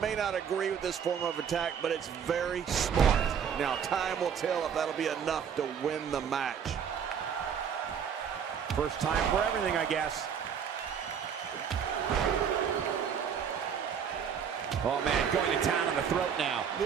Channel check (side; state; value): left; quieter; 7.6 dB